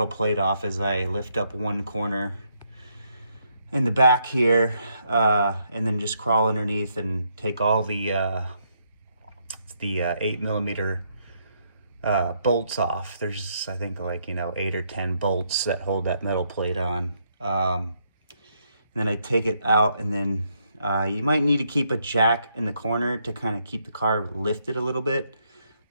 plate off is I lift up one corner in the back here, and then just crawl underneath and take all the 8mm bolts off. There's, I think, like, 8 or 10 bolts that hold that metal plate on. And then I take it out, and then you might need to keep a jack in the corner to kind of keep the car lifted a little bit,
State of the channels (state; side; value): inverted; both; correlation -0.75